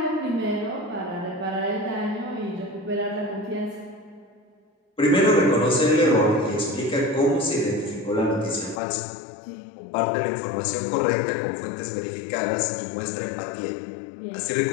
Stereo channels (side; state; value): right; drops out; at 8.8 s